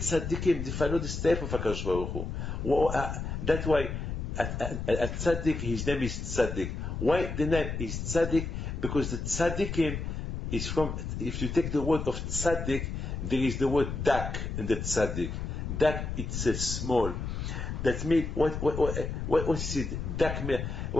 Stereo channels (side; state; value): left; noise; rumble, 4 dB below the sound